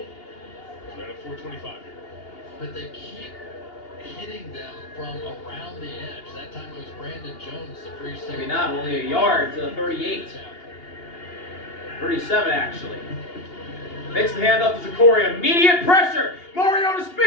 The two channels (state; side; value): late; right; 2.8 ms